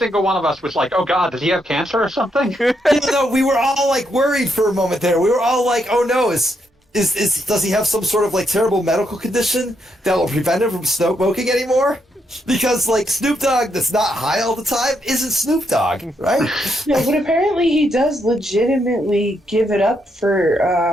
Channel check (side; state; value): both; normal; correlation 0.78